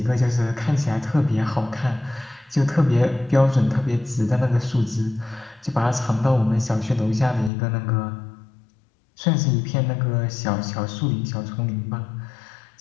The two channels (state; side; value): drops out; right; at 7.5 s